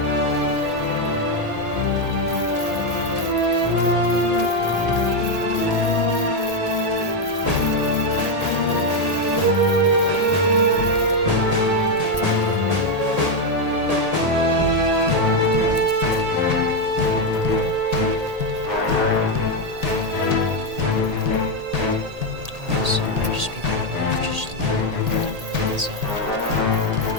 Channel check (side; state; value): left; late; 1.8 ms